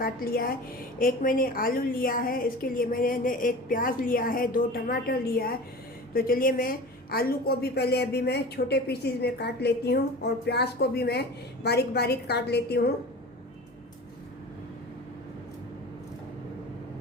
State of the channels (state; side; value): normal; both; correlation 0.36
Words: लिया है। एक मैंने आलू लिया है, इसके लिए मैंने एक प्याज लिया है, 2 टमाटर लिया है। तो चलिए मैं आलू को भी पहले अभी मैं छोटे पीसीज में काट लेती हूँ और प्याज को भी मैं बारीक बारीक काट लेती हूँ।